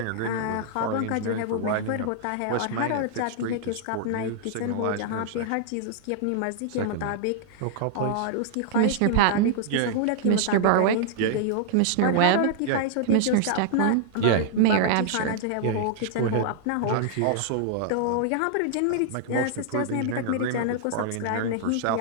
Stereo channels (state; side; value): different; both; correlation -0.01